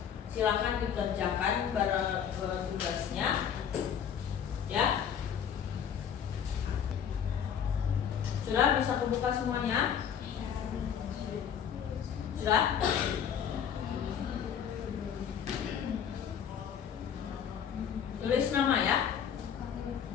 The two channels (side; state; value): right; quieter; 8.3 dB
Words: Silakan dikerjakan bareng tugasnya, ya. Sudah bisa kebuka semuanya? Sudah? Tulis nama ya.